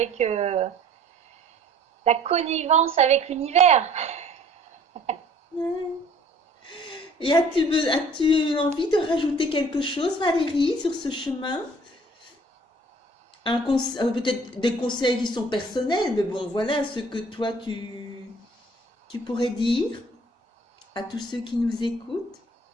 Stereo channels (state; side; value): normal; both; correlation 0.53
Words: la connivence avec l'univers. Ouais. Et as-tu envie de rajouter quelque chose, Valérie, sur ce chemin? Peut-être des conseils qui sont personnels, mais bon, voilà ce que toi tu pourrais dire à tous ceux qui nous écoutent.